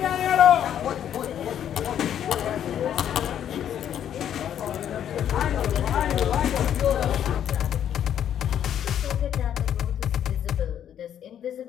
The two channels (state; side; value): quieter; right; 9.8 dB